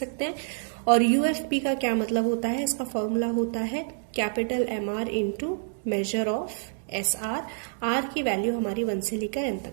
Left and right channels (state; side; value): silent; left; digital silence